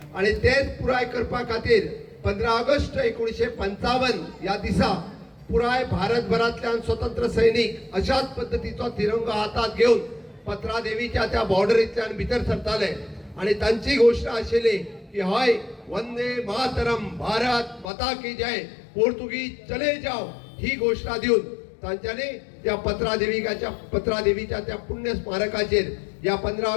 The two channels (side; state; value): right; drops out; at 17.9 s